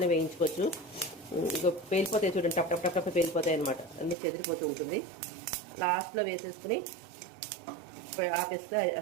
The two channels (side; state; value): left; drops out; at 4.2 s